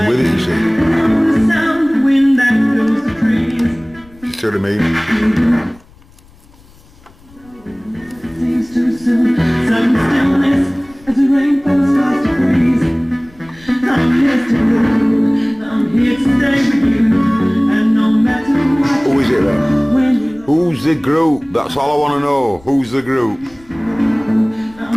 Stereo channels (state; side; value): noise; left; rumble, 27 dB below the sound